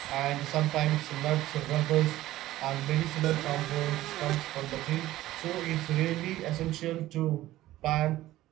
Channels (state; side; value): quieter; left; 15.5 dB